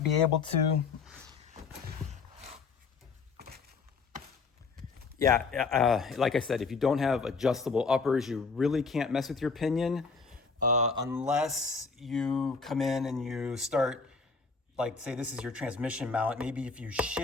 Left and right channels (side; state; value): right; quieter; 4.8 dB